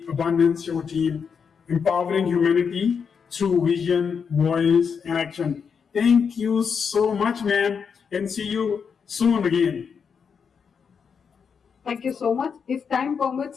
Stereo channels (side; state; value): right; quieter; 6.4 dB